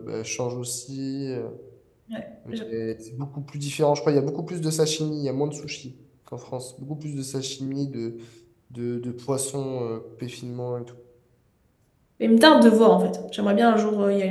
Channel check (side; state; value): both; identical; correlation 1.00